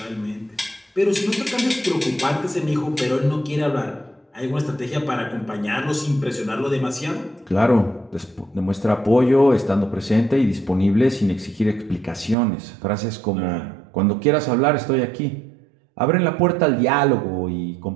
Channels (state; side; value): drops out; left; at 12.4 s